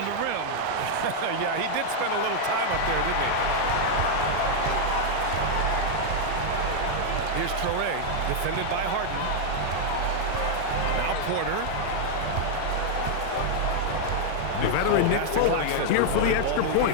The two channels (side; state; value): both; different; correlation 0.00